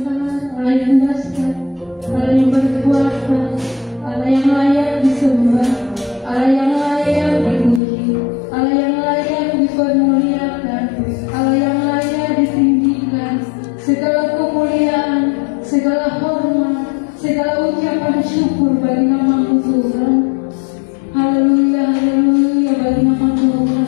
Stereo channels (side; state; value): right; drops out; at 7.8 s